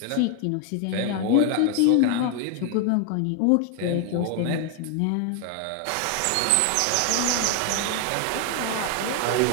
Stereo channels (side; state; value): both; different; correlation 0.01